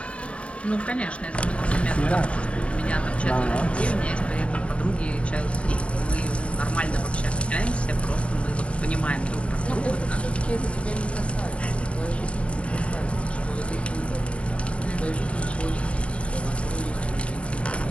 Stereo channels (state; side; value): late; right; 0.061 ms